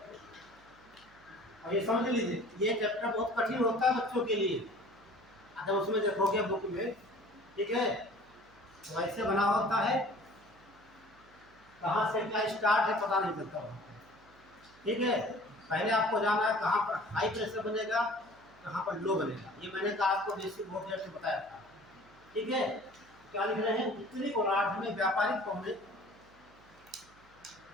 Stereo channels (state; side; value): noise; right; hum, 28 dB below the sound